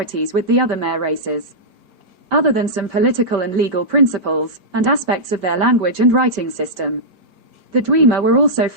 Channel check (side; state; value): left; late; 5.1 ms